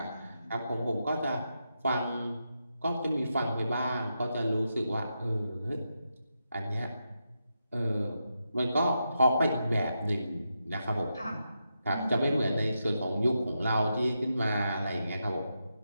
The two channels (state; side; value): inverted; both; correlation -0.86